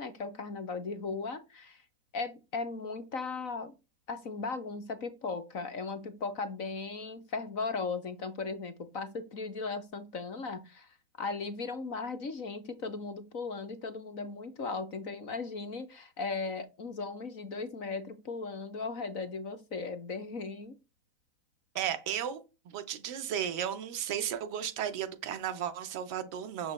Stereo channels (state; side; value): late; right; 4.0 ms